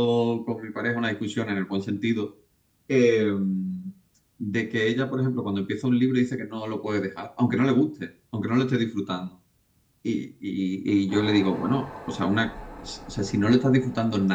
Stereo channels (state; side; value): identical; both; correlation 1.00